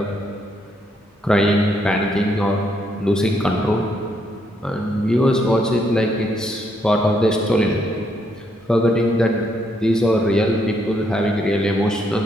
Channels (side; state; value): both; normal; correlation 0.74